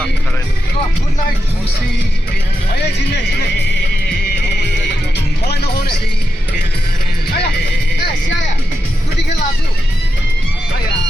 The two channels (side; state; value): both; normal; correlation 0.88